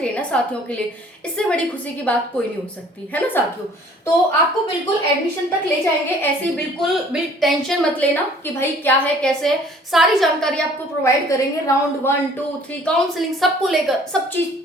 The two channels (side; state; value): both; normal; correlation 0.54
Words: है ना साथियों के लिए, इससे बड़ी खुशी की बात कोई नहीं हो सकती, है ना साथियों। तो आपको बिल्कुल एडमिशन तक ले जाएंगे, ऐसे बिल्कुल टेंशन मत लेना कि भाई क्या है कैसे है, सारी जानकारी आपको प्रोवाइड करेंगे। राउंड 1, 2, 3 काउंसलिंग सबको लेकर सब चीज